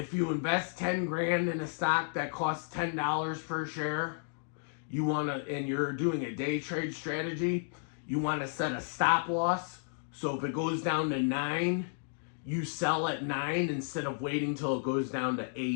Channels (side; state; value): right; silent; digital silence